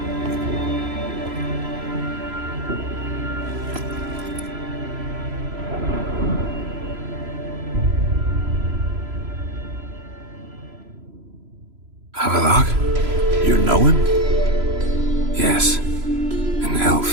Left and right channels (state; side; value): late; left; 3.0 ms